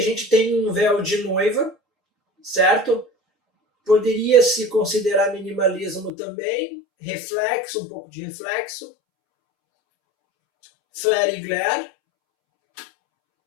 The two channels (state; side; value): drops out; right; at 6.1 s